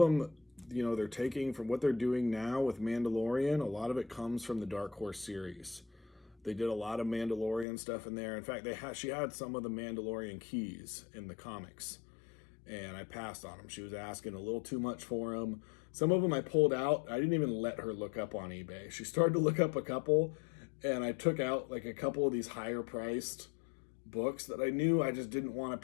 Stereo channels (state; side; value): drops out; right; at 7.7 s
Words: they're taking from what they're doing now with Mandalorian. A lot of it comes from the Dark Horse series. They did a lot of Mandalorian stuff in there. In fact, she had some of the Mandalorian keys in the comics, and I passed on them. She was asking a little too much for them. Some of them I pulled out. I didn't even let her look up on eBay. She started to look up a couple, and I took out like a couple of these higher priced books that I knew I just didn't want